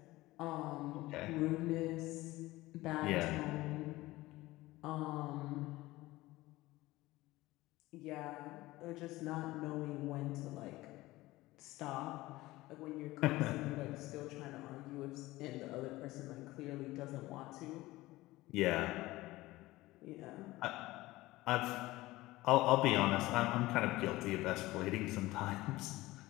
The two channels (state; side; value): quieter; right; 18.6 dB